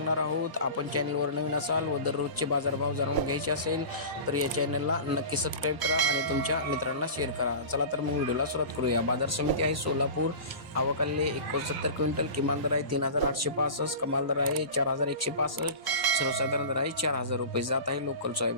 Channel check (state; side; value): late; left; 1.0 ms